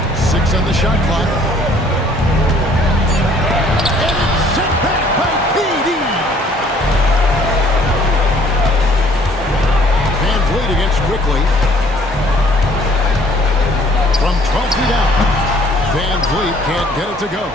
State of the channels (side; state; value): both; normal; correlation 0.58